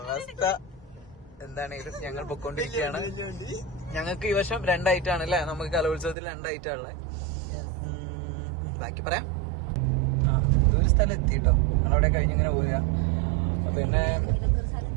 എന്താണെങ്കിലും ഞങ്ങൾ പൊക്കോണ്ടിരിക്കുകയാണ്. ഞങ്ങൾക്ക് ഈ വർഷം 2 ഐറ്റാണ് അല്ലേ? നമുക്ക് കലോത്സവത്തിൽ 2 ഐറ്റാണുള്ളത്. ബാക്കി പറയാം. ഒരു സ്ഥലം എത്തിട്ടോ, ഞങ്ങളവിടെ കഴിഞ്ഞിങ്ങനെ പോരാ. പിന്നെ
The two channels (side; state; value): left; drops out; at 6.2 s